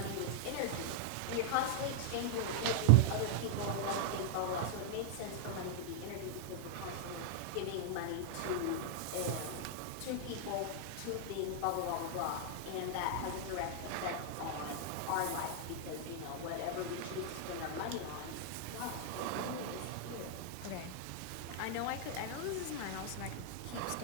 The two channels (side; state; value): both; different; correlation -0.01